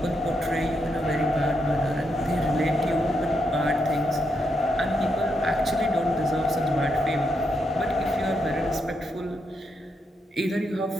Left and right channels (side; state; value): both; normal; correlation 0.81